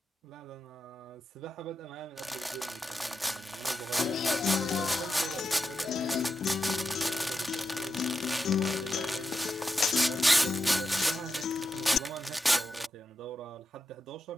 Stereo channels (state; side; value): normal; both; correlation 0.87